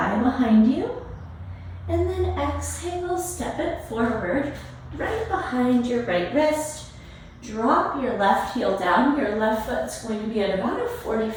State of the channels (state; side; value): identical; both; correlation 1.00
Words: behind you. And then exhale, step it forward, right behind your right wrist. Drop your left heel down. Your left foot's going to be at about a